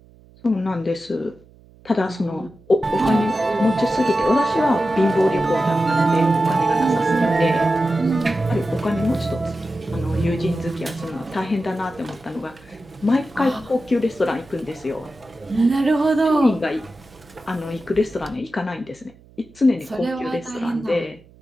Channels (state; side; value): noise; right; hum, 26 dB below the sound